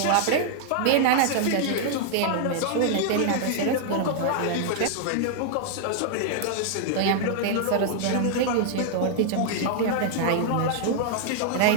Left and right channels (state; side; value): different; both; correlation 0.00